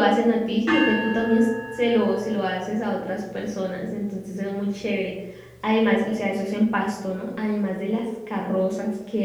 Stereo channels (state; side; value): identical; both; correlation 1.00